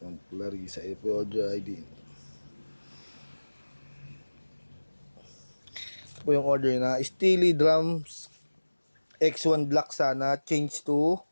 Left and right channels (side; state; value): both; inverted; correlation -1.00